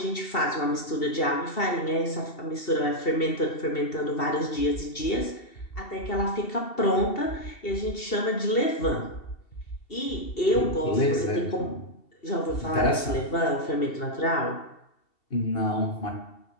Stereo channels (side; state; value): right; late; 2.7 ms